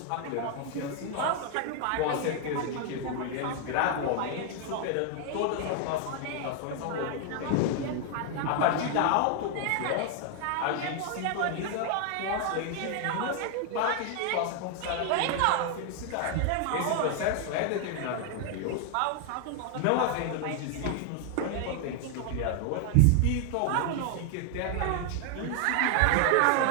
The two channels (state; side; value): different; both; correlation 0.00